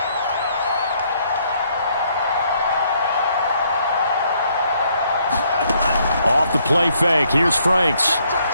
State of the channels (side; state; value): both; inverted; correlation -0.69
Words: the play fake. Here's Franks.